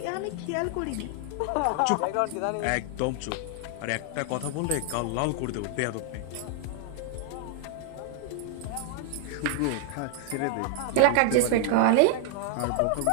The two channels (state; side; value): different; both; correlation 0.00